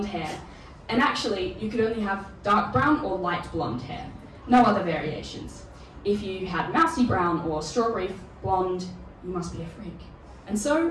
hair, and actually you could only have dark brown or light blonde hair. No other variations. If you had mousy brown or strawberry blonde, you must be a freak. And so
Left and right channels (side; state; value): both; identical; correlation 1.00